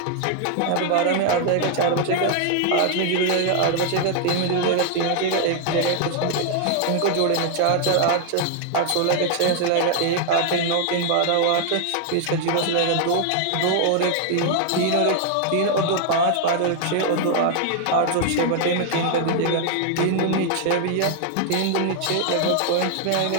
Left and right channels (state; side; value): different; both; correlation 0.00